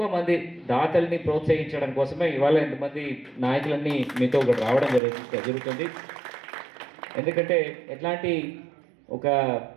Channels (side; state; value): left; drops out; at 5.0 s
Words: మంది దాతల్ని ప్రోత్సహించడం కోసమే ఇవాళ ఎంతమంది నాయకులన్నీ మీతో ఒకటి రావడం జరుగుతుంది. ఎందుకంటే ఎట్లాంటి ఒక